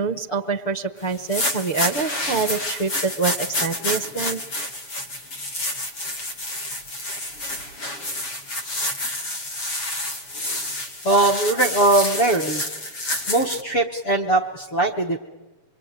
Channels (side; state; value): right; late; 7.1 ms